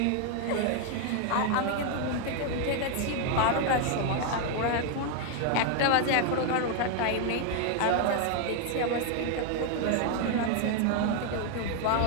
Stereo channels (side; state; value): both; different; correlation 0.00